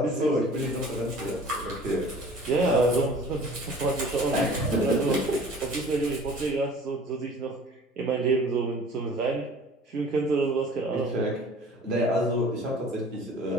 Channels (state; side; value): normal; both; correlation 0.47